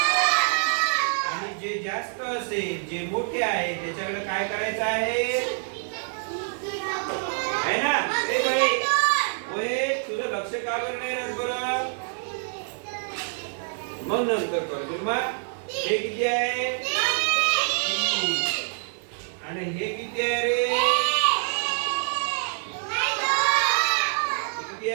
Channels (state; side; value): silent; left; 61 dB below the other